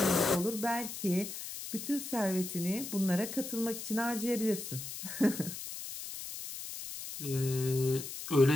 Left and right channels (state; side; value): noise; left; hiss, 8 dB below the sound